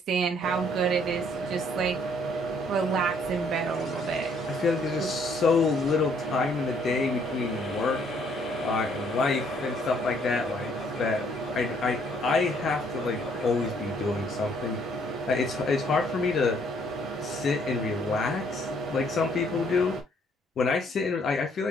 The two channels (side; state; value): both; normal; correlation 0.65